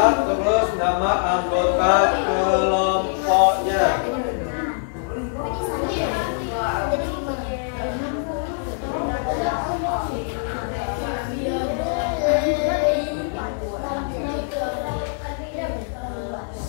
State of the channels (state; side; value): silent; right; digital silence